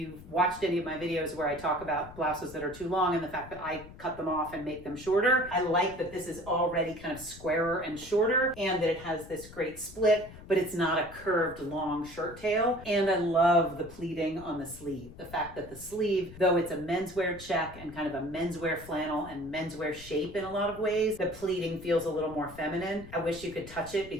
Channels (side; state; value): left; noise; rumble, 17 dB below the sound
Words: watched any of my videos where I talk about blouses that are too long and the fact that I cut them off and make them shorter, I like that this is already kind of squarer and shorter, and that it has this great split, but it's not a curved long shirt tail. And I love the pleating on the sleeve. The fact that the sleeve, though it's a menswear check and kind of a menswear flannel and menswear shape in a lot of ways, the pleating feels a little more feminine. I wish you could touch it